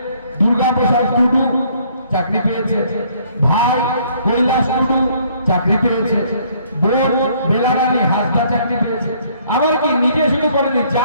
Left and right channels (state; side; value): inverted; both; correlation -0.63